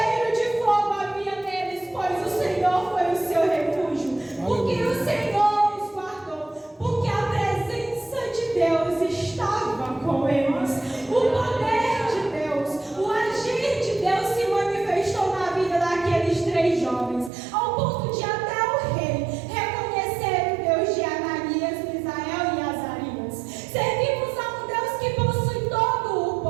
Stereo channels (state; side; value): drops out; left; at 17.3 s